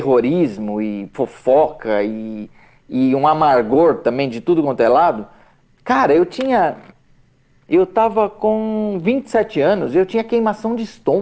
e fofoca e um amargor também de tudo quanto é lado. Cara, eu tava com 27 anos e eu tinha queimação de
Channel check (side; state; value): both; identical; correlation 1.00